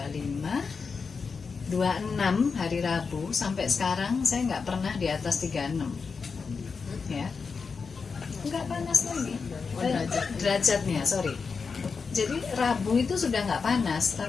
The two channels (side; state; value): right; quieter; 5.2 dB